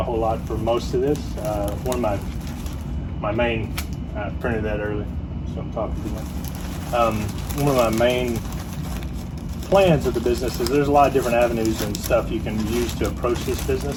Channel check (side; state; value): both; identical; correlation 1.00